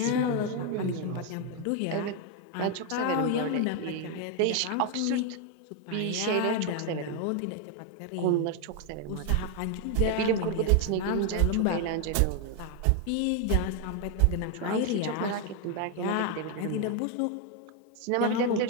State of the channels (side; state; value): both; different; correlation 0.01